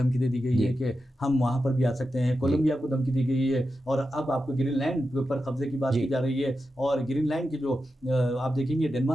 دے دی گئی ہے کہ ہم وہاں پر بھی آ سکتے ہیں. کولمبیا کو دھمکی دی گئی ہے. اور اب آپ کو گرین لینڈ پر قبضے کی بات کی جا رہی ہے. اور گرین لینڈ کی جو آپ دیکھیں گے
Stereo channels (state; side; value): normal; both; correlation 0.90